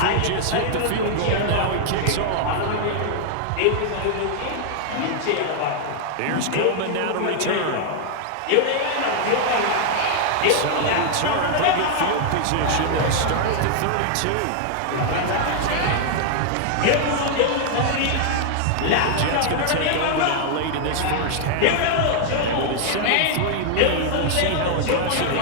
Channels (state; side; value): different; both; correlation 0.00